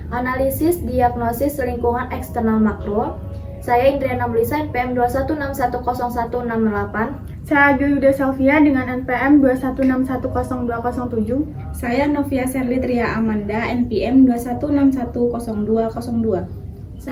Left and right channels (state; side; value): identical; both; correlation 1.00